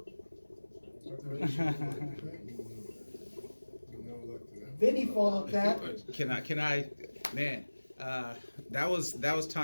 Vinny followed that. Can I, man, that was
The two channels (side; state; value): both; inverted; correlation -1.00